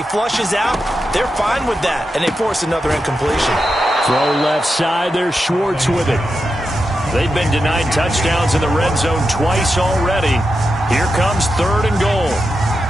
flushes out, they're fine with that, and they force another incompletion. Throw left side. There's Schwartz with it. They've been denied touchdowns in the red zone twice already. Here comes 3rd and goal.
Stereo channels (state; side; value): normal; both; correlation 0.88